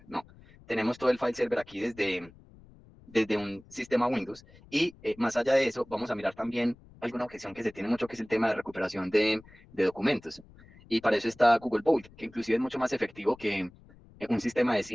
no. Tenemos todo el file server aquí desde un sistema Windows. Y más allá de eso, vamos a mirar también alguna objeción que se tiene mucho, que es el tema de recuperación de documentos. Y para eso está Google Vault, que inclusive es mucho más efectivo que un sistema de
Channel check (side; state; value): left; noise; rumble, 24 dB below the sound